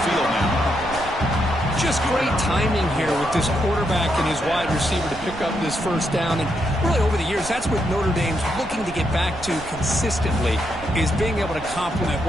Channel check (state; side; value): noise; right; rumble, 16 dB below the sound